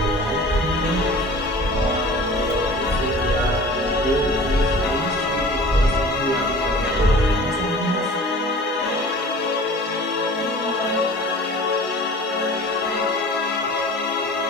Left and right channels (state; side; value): normal; both; correlation 0.43